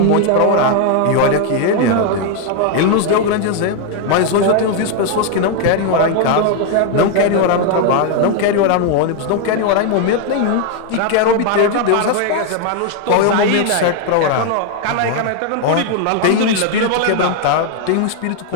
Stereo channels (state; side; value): different; both; correlation 0.00